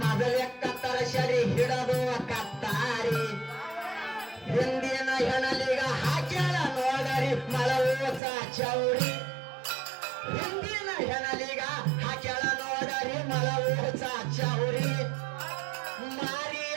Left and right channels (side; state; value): left; drops out; at 8.2 s